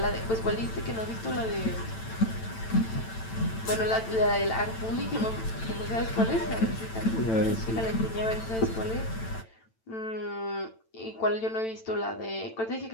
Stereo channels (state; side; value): late; right; 9.0 ms